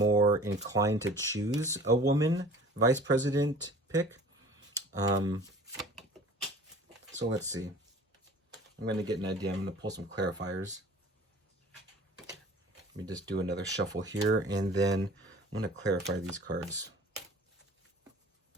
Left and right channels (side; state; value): both; normal; correlation 0.46